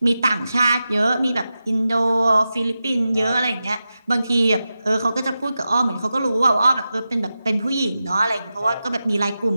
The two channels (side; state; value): both; inverted; correlation -0.92